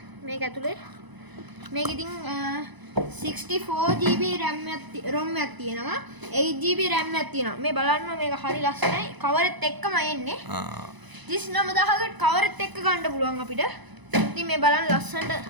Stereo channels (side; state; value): left; late; 1.0 ms